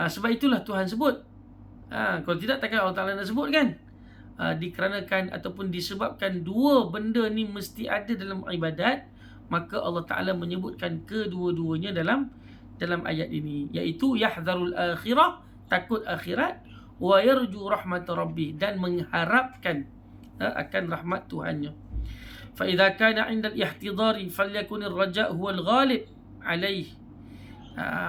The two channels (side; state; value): both; identical; correlation 1.00